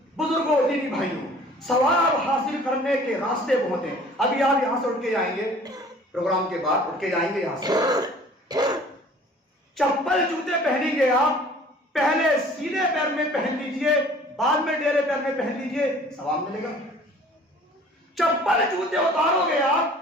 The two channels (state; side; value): normal; both; correlation 0.50